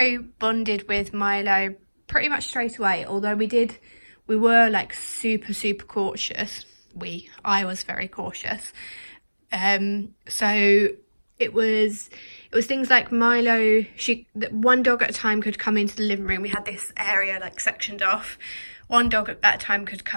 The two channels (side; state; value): both; inverted; correlation -1.00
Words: bonded with Milo pretty much straight away, although we were like super cautious. I was very cautious. So it was things like Milo, one dog at a time could come into the living room. We had this area like sectioned off. One dog at a time could